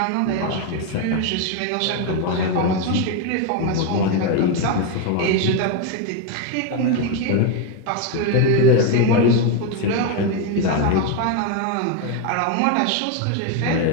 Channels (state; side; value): different; both; correlation 0.02